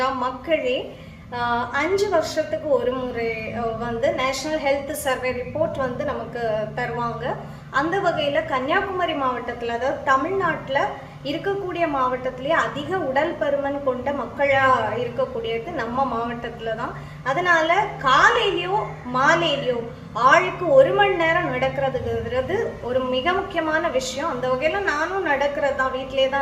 மக்களே, 5 வருஷத்துக்கு ஒரு முறை நேஷனல் ஹெல்த் சர்வே ரிப்போர்ட் நமக்கு தருவாங்க. அந்த வகையில் கன்னியாகுமரி மாவட்டத்தில், அதாவது தமிழ்நாட்டில் இருக்கக்கூடிய மாவட்டத்திலேயே அதிக உடல் பருமன் கொண்ட மக்களாக இருக்கக்கூடியது நம்ம மாவட்டத்தில் தான். அதனால காலையிலையோ மாலையிலையோ ஆளுக்கு 1 மணி நேரம் நடக்கிறதுங்கிறது ஒரு மிக முக்கியமான விஷயம். அந்த வகையில் நானும் நடக்கிறது தான், வீட்டிலே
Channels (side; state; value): both; identical; correlation 1.00